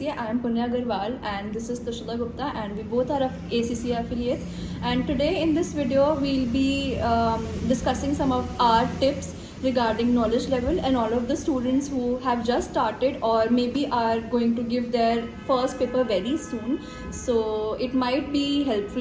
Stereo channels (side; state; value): both; identical; correlation 1.00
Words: I am Punya Agarwal and this is Tushita Gupta and we both are ACCA affiliates. And today in this video we'll be discussing some of our tips regarding knowledge level and all of the students who have just started or maybe are going to give their first paper very soon. So it might be